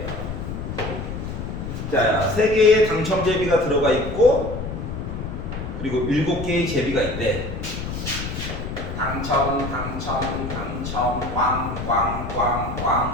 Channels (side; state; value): left; noise; rumble, 6 dB below the sound